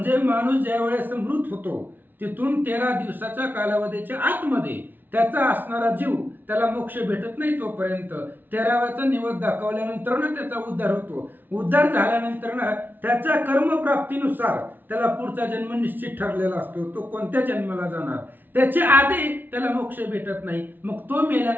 माणूस ज्या वेळेस मृत होतो तिथून 13 दिवसाच्या कालावधीच्या आतमध्ये त्याचा असणारा जीव त्याला मोक्ष भेटत नाही. तोपर्यंत 13व्याचा निवद दाखवल्यानंतर त्याचा उद्धार होतो. उद्धार झाल्यानंतर त्याच्या कर्मप्राप्तीनुसार त्याला पुढचा जन्म निश्चित ठरलेला असतो. तो कोणत्या जन्माला जाणार त्याच्या आधी त्याला मोक्ष भेटत नाही. मग तो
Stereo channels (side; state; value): left; late; 0.090 ms